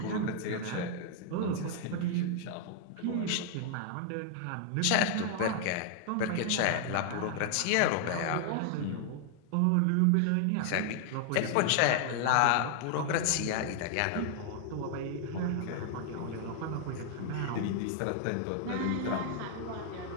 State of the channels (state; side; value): different; both; correlation 0.00